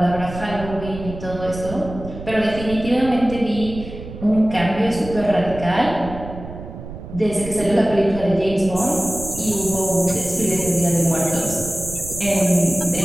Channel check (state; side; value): noise; right; rumble, 11 dB below the sound